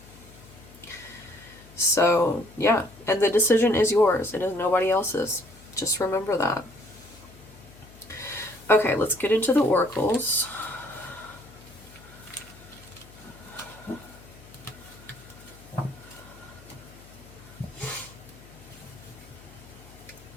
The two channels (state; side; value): noise; left; hum, 21 dB below the sound